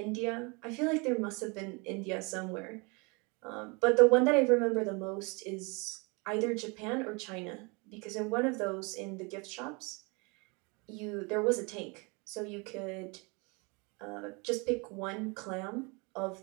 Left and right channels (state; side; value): quieter; left; 29.8 dB